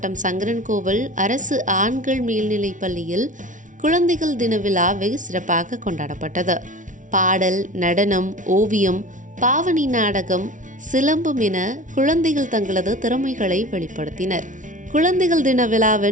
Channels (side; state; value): left; late; 0.37 ms